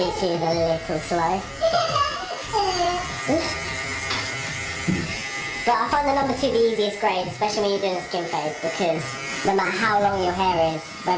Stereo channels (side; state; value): both; identical; correlation 1.00